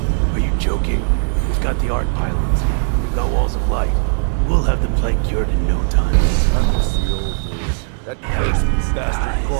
Are you joking? We've got the art pylons. We've got walls of light. We'll have the plague cured in no time. I miss the old days. That cursed bastard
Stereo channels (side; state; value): left; silent; digital silence